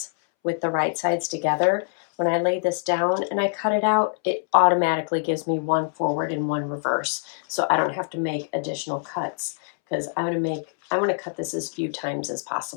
with the right sides together, when I lay this down and I cut it out, it automatically gives me one forward and one reverse. So I don't have to make additional cuts, because I want to cut this as few times as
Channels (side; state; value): right; silent; 62 dB below the other